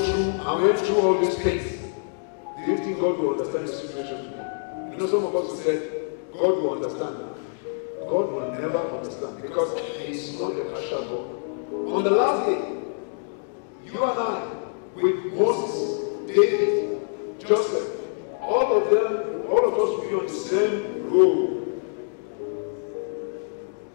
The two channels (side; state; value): right; silent; digital silence